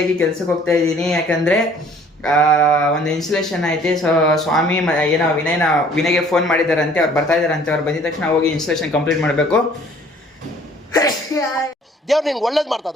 ಕೆಲ್ಸಕ್ಕೆ ಹೋಗ್ತಾ ಇದ್ದೀನಿ. ಯಾಕಂದ್ರೆ ಒಂದು ಇನ್ಸ್ಟಾಲೇಷನ್ ಐತೆ. ಸೊ ಸ್ವಾಮಿ ಏನೋ ವಿನಯ್ಗೆ ಫೋನ್ ಮಾಡಿದಾರಂತೆ, ಅವ್ರು ಬರ್ತಾ ಇದಾರಂತೆ. ಅವ್ರು ಬಂದಿದ ತಕ್ಷಣ ಹೋಗಿ ಇನ್ಸ್ಟಾಲೇಷನ್ ಕಂಪ್ಲೀಟ್ ಮಾಡಬೇಕು. ದೇವ್ರು ನಿಂಗೆ ಒಳ್ಳೇದು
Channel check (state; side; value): normal; both; correlation 0.55